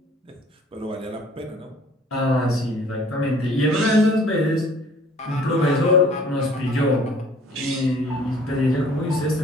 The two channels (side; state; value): both; normal; correlation 0.54